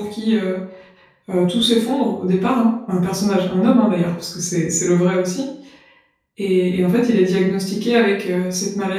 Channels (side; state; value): both; identical; correlation 1.00